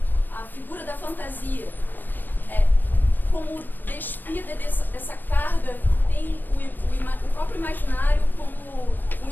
a figura da fantasia como despida dessa carga que tem o próprio imaginário como um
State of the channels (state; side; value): late; right; 0.091 ms